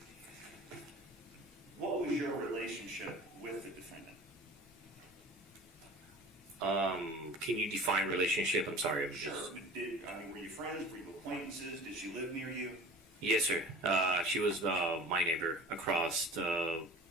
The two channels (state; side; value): normal; both; correlation 0.41